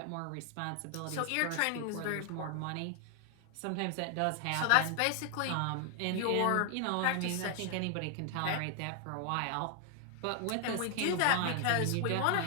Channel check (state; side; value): different; both; correlation 0.00